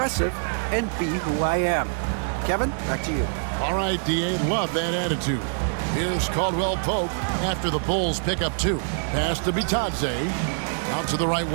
and be who I am. Kevin, back to you. All right, D.A., love that attitude. Here's Caldwell Pope after the Bulls pick up 2. Pass to Bitadze. Out to the right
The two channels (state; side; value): silent; left; 61 dB below the other